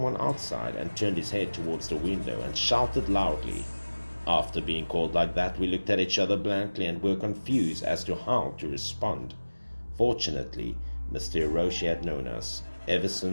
outside, and turned his head towards the window and shouted loudly. After being called like that, we looked at each other blankly and were confused as to how to respond. Fortunately, Mr. Hiroshi had known us ever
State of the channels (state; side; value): inverted; both; correlation -1.00